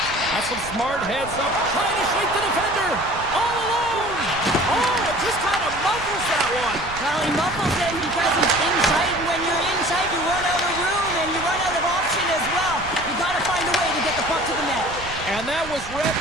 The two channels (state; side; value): noise; right; rumble, 14 dB below the sound